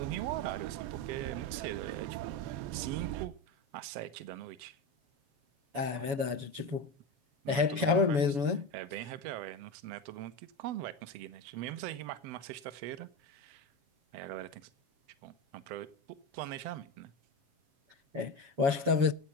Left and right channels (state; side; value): late; left; 7.1 ms